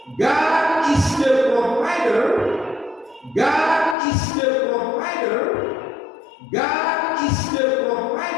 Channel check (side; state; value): right; drops out; at 4.0 s